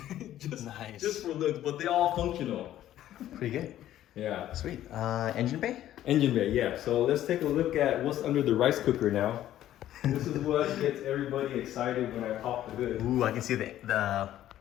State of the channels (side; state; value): right; quieter; 12.7 dB